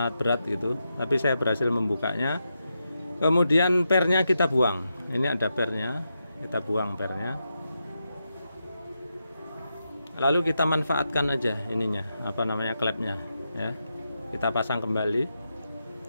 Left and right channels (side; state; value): both; inverted; correlation -0.86